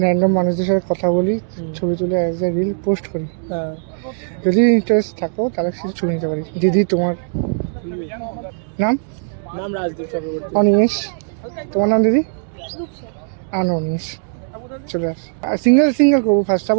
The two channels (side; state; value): left; silent; digital silence